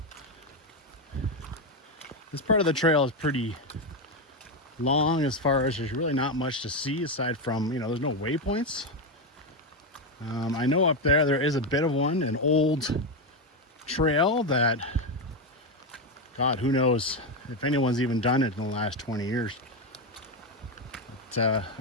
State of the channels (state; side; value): normal; both; correlation 0.09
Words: This part of the trail is pretty long as far as there's really not much to see aside from, you know, there's no waypoints. I know up there is a bit of one, an old trail that, God, who knows if anyone's even done it in the last 20 years. But